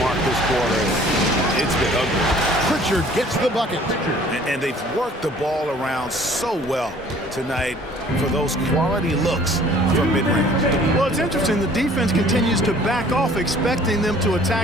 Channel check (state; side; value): normal; both; correlation 0.53